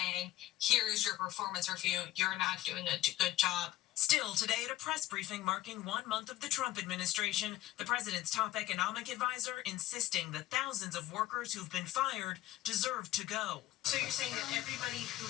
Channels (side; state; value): right; quieter; 15.3 dB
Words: here is your performance review, you're not doing a good job. Still, today at a press briefing marking 1 month of the Trump administration, the president's top economic advisor insisting that thousands of workers who've been fired deserve to go. So you're saying that everybody